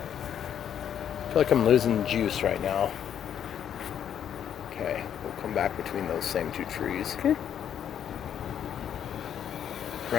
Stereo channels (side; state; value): right; quieter; 9.2 dB